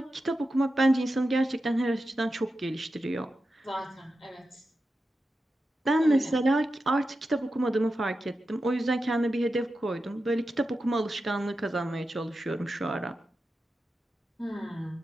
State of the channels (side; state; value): both; normal; correlation 0.90